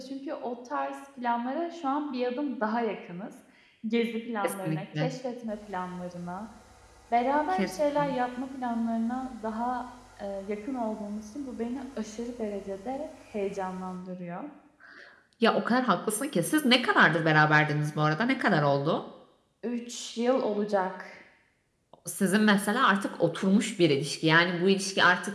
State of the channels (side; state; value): both; identical; correlation 1.00